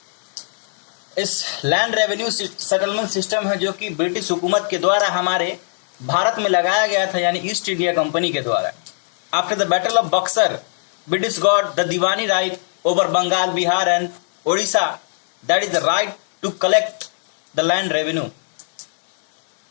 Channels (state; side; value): silent; right; digital silence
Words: इस लैंड रेवेन्यू सेटलमेंट सिस्टम है जो कि ब्रिटिश हुकूमत के द्वारा हमारे भारत में लगाया गया था, यानी ईस्ट इंडिया कंपनी के द्वारा। After the battle of Buxar, British got the Diwani right over Bengal, Bihar and Odisha, that is the right to collect the land revenue।